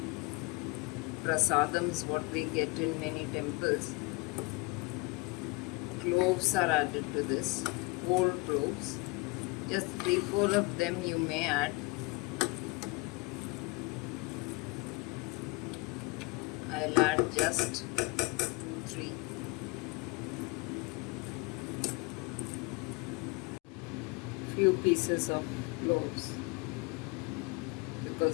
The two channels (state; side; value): quieter; right; 27.5 dB